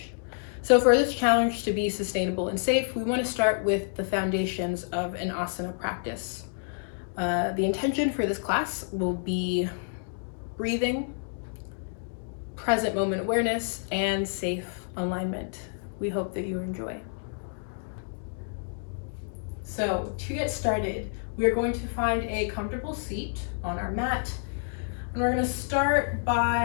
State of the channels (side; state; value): right; silent; digital silence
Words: So for this challenge to be sustainable and safe, we want to start with the foundations of an asana practice. The intention for this class will be breathing, present moment awareness, and safe alignment. We hope that you enjoy. So to get started, we are going to find a comfortable seat on our mat, and we're going to start